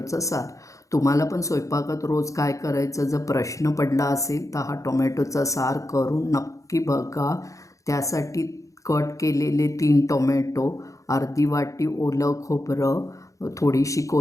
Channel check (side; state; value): right; late; 0.16 ms